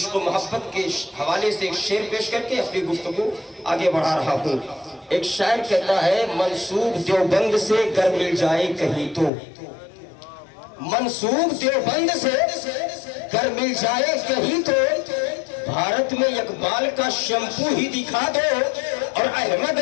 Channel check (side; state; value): right; drops out; at 9.3 s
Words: و محبت کے حوالے سے ایک شعر پیش کر کے اپنی گفتگو آگے بڑھا رہا ہوں. ایک شاعر کہتا ہے منسوب دیوبند سے گر مل جائے کہیں تو, منسوب دیوبند سے گر مل جائے کہیں تو, بھارت میں اقبال کا شیمپو ہی دکھا دو, اور احمد